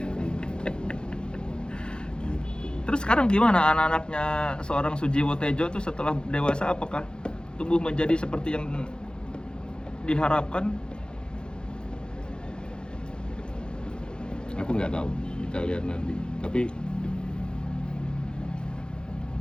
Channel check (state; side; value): late; right; 0.049 ms